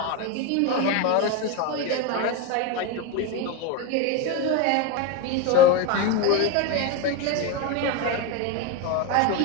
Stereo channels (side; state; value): both; different; correlation 0.04